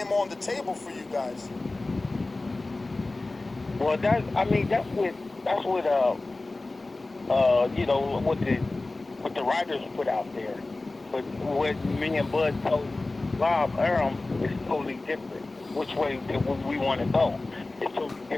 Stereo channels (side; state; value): right; quieter; 3.1 dB